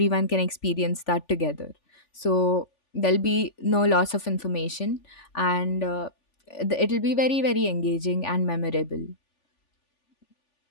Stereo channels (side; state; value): right; late; 3.4 ms